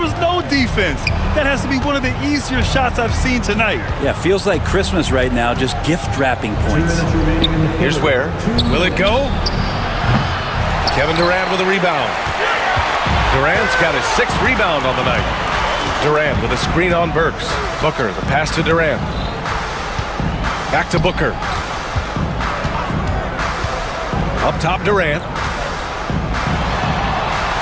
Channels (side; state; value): both; identical; correlation 1.00